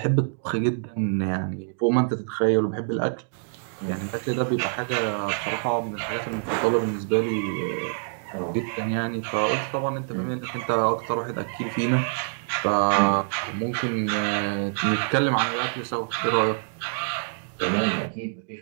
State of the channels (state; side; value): silent; left; digital silence